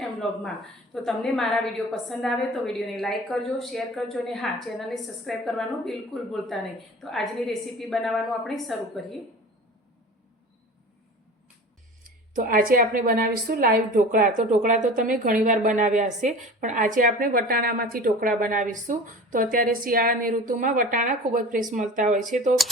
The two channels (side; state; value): both; normal; correlation 0.38